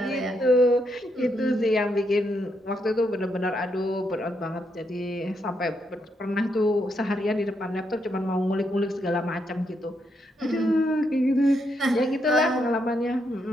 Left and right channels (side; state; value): both; normal; correlation 0.79